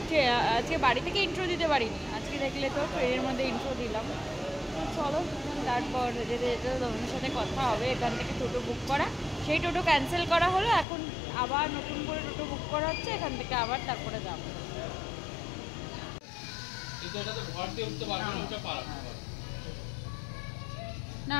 আজকে বাড়ি থেকে ইন্ট্রো দিতে পারিনি। আজকে দেখলে তো ট্রেনের মধ্যে ইন্ট্রো দিলাম। তো চলো, তারপর যেতে তোমাদের সাথে কথা হবে। এখান থেকে টোটো বুক করা, সেই টোটো ক্যান্সেল করা হলো, এখন আবার নতুন করে টোটো বুক করা হচ্ছে। এখান থেকে আবার তারপরে যাবো। না,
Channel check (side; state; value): right; drops out; at 10.9 s